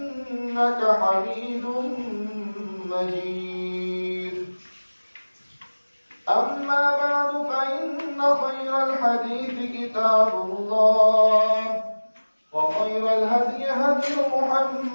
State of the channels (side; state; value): both; inverted; correlation -1.00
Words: حميد مجيد أما بعد فإن خير الحديث كتاب الله وخير الهدي هدي